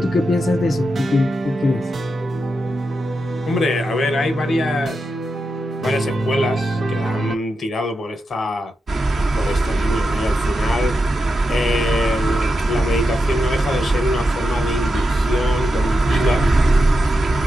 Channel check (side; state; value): both; normal; correlation 0.88